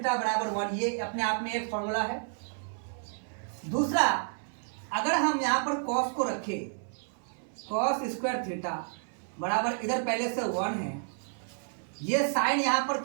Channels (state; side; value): silent; left; 57 dB below the other